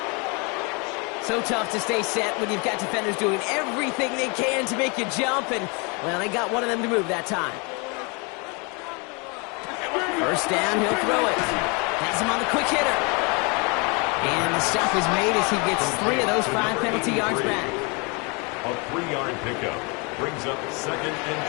So tough to stay set when you've got defenders doing everything they can to make you jump. And, well, they got one of them to move that time. 1st down, he'll throw it. Has him on the quick hitter. And the stop is made as he gets 3 of those 5 penalty yards back. A 3-yard pickup brings up 2nd and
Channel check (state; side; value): quieter; right; 31.3 dB